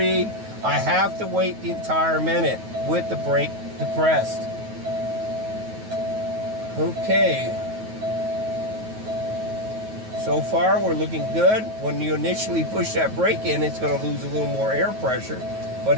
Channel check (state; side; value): late; left; 9.3 ms